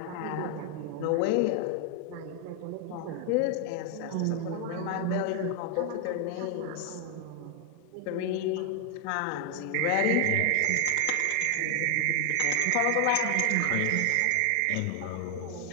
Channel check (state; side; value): different; both; correlation 0.00